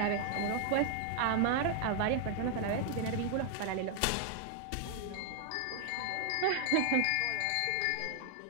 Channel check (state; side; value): different; both; correlation 0.00